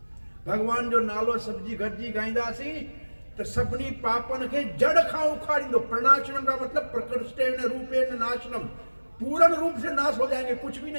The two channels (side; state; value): both; inverted; correlation -1.00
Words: भगवान जो नालो सब्जी गरजी गाईंदासी तो सभनी पापन के जड़ खां उखाड़ींदो। प्रणाशनम का मतलब प्रकृष्टेन रूपेण नाशनम, पूर्ण रूप से नाश हो जाएंगे, कुछ भी